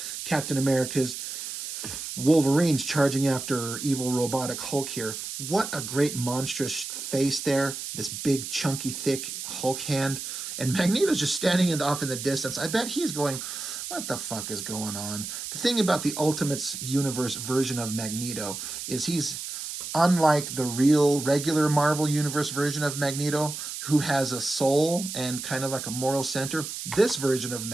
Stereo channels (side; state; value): right; noise; hiss, 7 dB below the sound